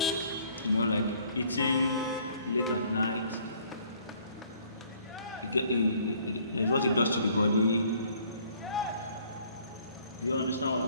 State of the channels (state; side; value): inverted; both; correlation -0.60